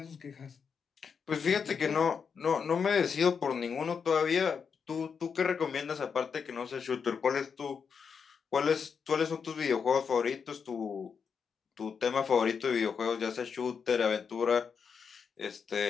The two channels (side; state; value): right; quieter; 6.3 dB